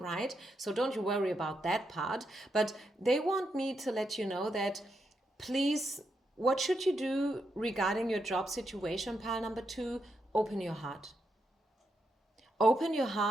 So don't you worry about that part. But they want me to let you know that, please, what should you do regarding your job situation, pile number 2? Open your heart. Open your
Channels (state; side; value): normal; both; correlation 0.82